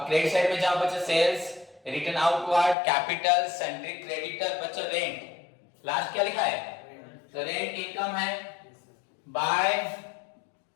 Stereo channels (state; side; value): drops out; right; at 2.8 s